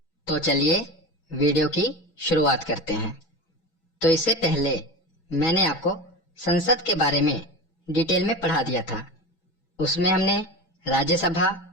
तो चलिए वीडियो की शुरुआत करते हैं। तो इससे पहले मैंने आपको संसद के बारे में डिटेल में पढ़ा दिया था। उसमें हमने राज्यसभा,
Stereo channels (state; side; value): late; right; 6.1 ms